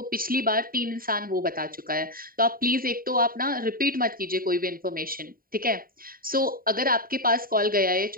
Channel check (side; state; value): left; late; 0.42 ms